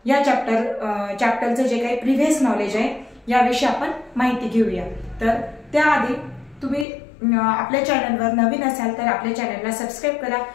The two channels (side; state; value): right; drops out; at 6.9 s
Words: या चॅप्टरचं जे काही प्रिव्हियस नॉलेज आहे याविषयी आपण माहिती घेऊया। तर त्याआधी तुम्ही आपल्या चॅनलवर नवीन असाल तर आपल्या चॅनलला सबस्क्राइब करा,